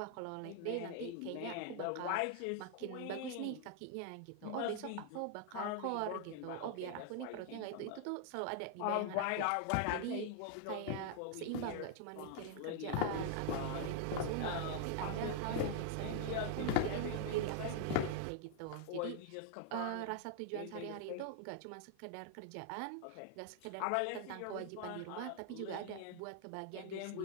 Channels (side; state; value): both; different; correlation 0.00